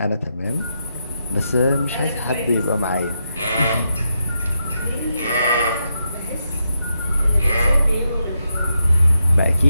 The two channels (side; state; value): both; inverted; correlation -0.84